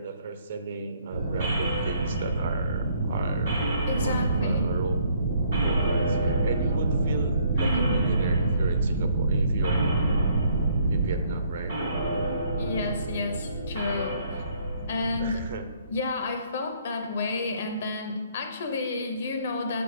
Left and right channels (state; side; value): inverted; both; correlation -0.65